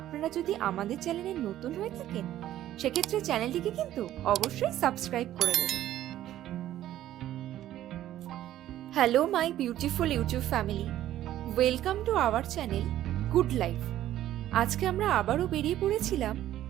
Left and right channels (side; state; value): left; quieter; 13.0 dB